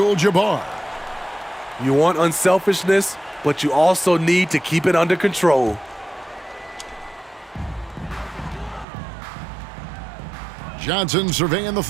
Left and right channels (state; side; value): drops out; left; at 8.8 s